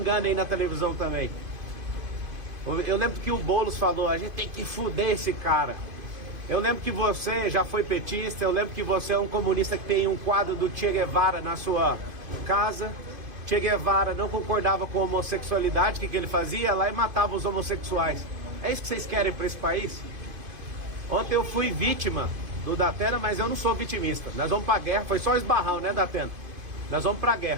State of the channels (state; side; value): late; left; 2.5 ms